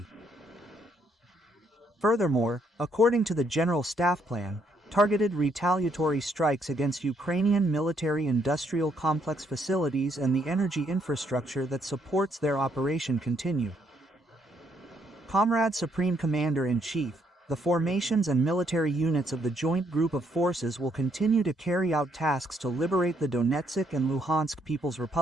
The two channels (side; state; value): both; normal; correlation 0.72